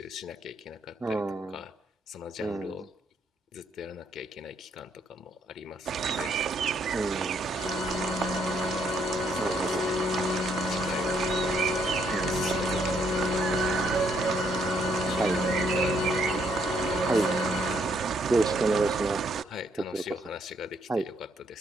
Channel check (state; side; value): normal; both; correlation 0.72